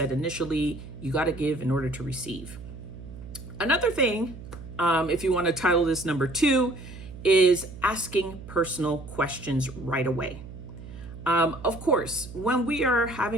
initially. You got to give in order to receive. Another thing, if you want to title this number 2, is asking personal questions right away. Of course, when we are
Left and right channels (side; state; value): right; noise; hum, 14 dB below the sound